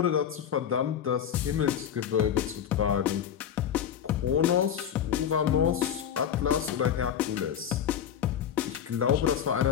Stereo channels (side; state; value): right; quieter; 9.1 dB